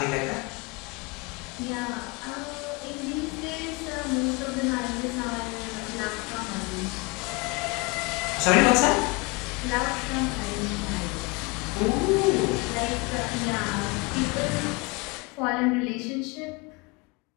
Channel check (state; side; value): quieter; right; 27.2 dB